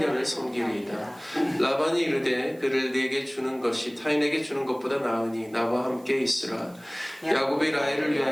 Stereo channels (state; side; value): noise; right; hiss, 27 dB below the sound